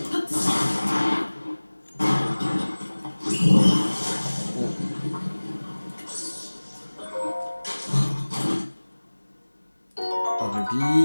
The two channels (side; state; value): both; inverted; correlation -1.00